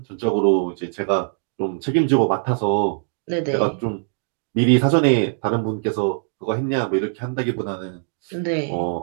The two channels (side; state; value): left; silent; digital silence